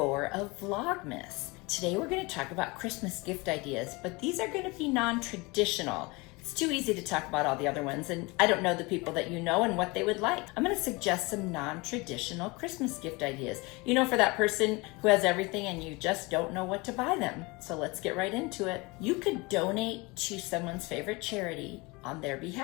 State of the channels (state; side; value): quieter; right; 25.3 dB